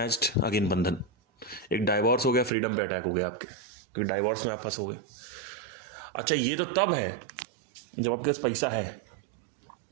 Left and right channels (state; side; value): drops out; left; at 2.5 s